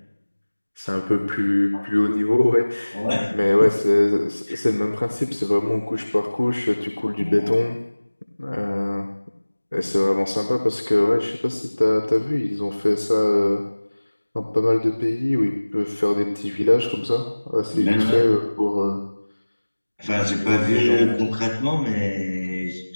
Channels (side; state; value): both; inverted; correlation -1.00